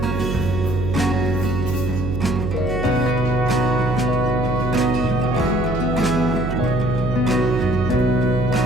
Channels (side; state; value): right; noise; hum, 2 dB below the sound